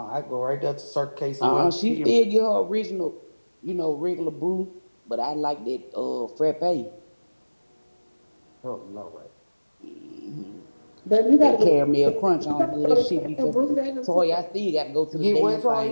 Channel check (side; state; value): both; inverted; correlation -1.00